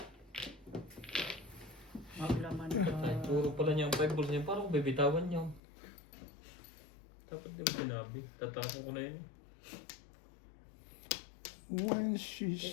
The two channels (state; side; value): drops out; right; at 5.6 s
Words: Maglaman ka. Ay, puro pala niya ang 5 balls niya. Parang bibitawan niyo. Dapat di mo sinabi. Tatapon ko na yun. When